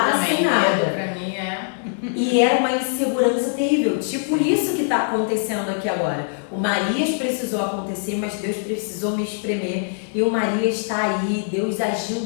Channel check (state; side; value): silent; right; digital silence